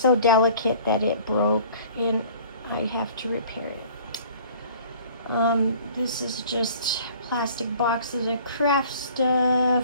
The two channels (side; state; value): both; inverted; correlation -0.50